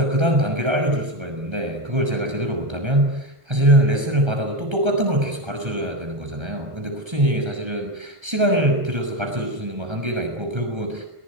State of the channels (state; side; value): late; left; 1.3 ms